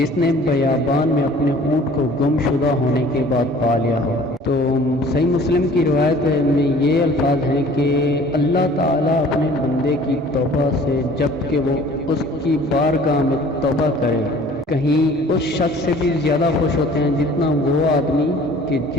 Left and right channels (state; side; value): normal; both; correlation 0.50